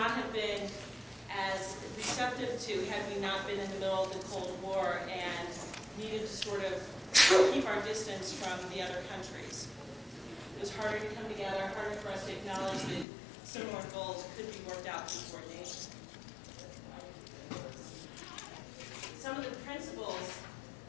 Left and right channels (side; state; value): right; drops out; at 13.1 s